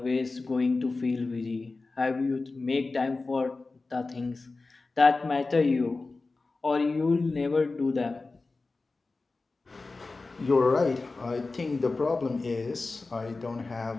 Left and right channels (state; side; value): quieter; right; 3.6 dB